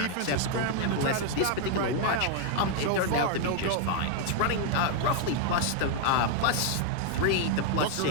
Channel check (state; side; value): different; both; correlation 0.00